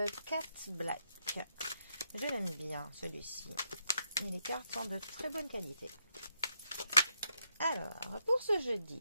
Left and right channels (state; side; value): inverted; both; correlation -0.78